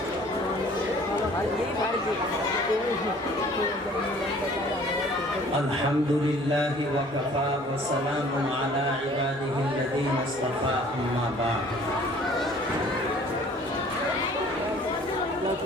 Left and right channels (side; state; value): both; normal; correlation 0.53